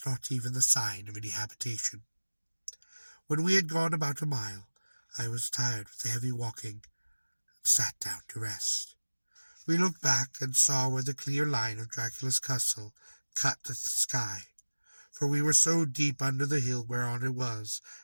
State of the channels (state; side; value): inverted; both; correlation -1.00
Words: not even the sign of any habitation. When we had gone about a mile, I was tired with the heavy walking, and sat down to rest. We looked back and saw where the clear line of Dracula's castle cut the sky, for we were so deep under the hill whereon it was